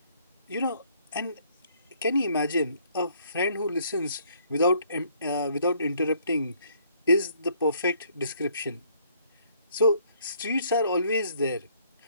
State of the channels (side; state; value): both; inverted; correlation -0.64